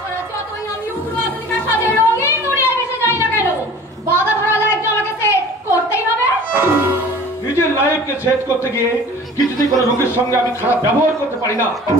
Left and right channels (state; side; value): normal; both; correlation 0.45